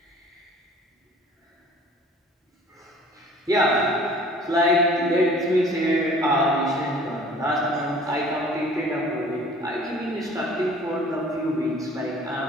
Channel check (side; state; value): both; normal; correlation 0.50